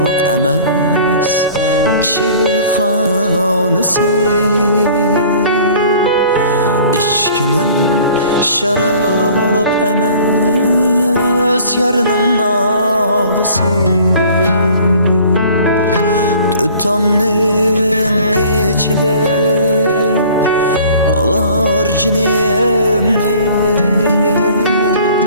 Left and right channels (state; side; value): inverted; both; correlation -0.49